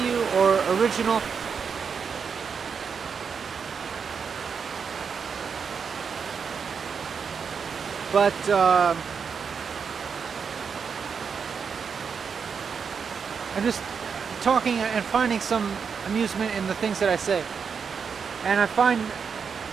or original. But I'm just talking and finding some amusement in the things that I say, and I find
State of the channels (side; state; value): left; quieter; 6.2 dB